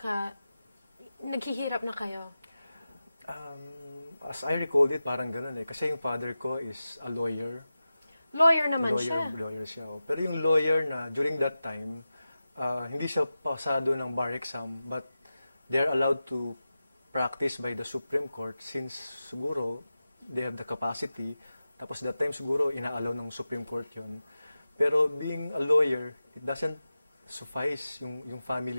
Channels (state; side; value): inverted; both; correlation -0.94